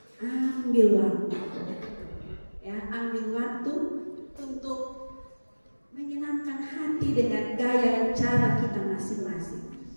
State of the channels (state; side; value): inverted; both; correlation -1.00